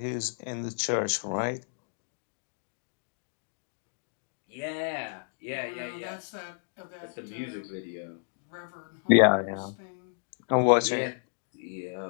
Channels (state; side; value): silent; right; digital silence